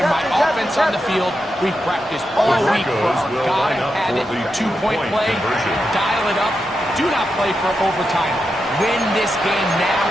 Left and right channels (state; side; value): normal; both; correlation 0.87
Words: my offense on the field. We've practiced all week for gotta have it, two-point play, dial it up. Do not play for overtime. Win this game now